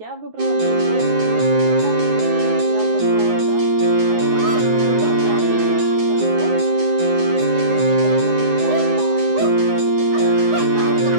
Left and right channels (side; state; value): left; late; 9.5 ms